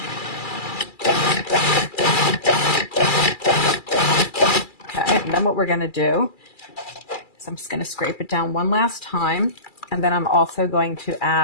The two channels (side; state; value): right; late; 2.3 ms